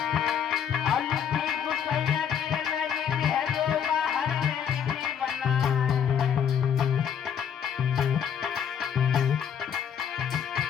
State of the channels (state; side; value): quieter; right; 8.4 dB